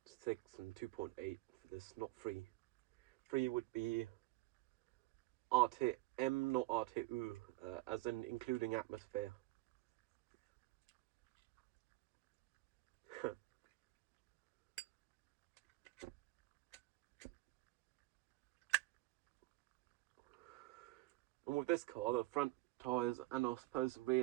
and 2.8 for this, not 3. 3 would be RTM, not RTU, as in including atmosphere. And with this car, the front tyres, and I suppose the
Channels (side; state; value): left; quieter; 20.4 dB